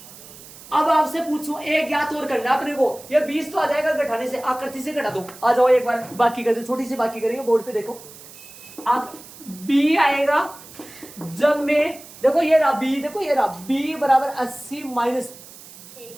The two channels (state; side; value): noise; right; hiss, 18 dB below the sound